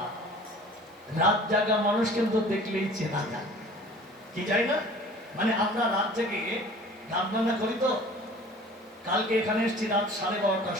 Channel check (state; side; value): normal; both; correlation 0.46